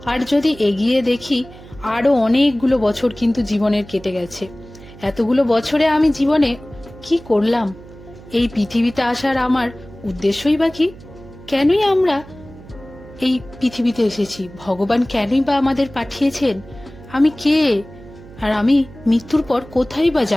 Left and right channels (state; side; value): noise; right; hum, 19 dB below the sound